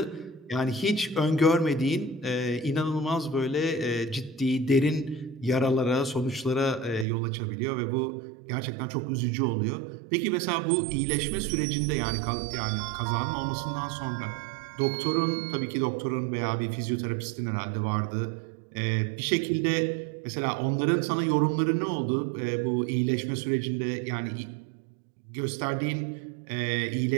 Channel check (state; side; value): drops out; left; at 7.1 s